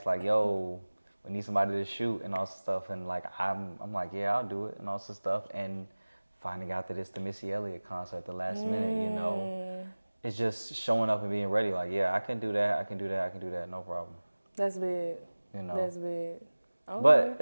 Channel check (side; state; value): both; inverted; correlation -1.00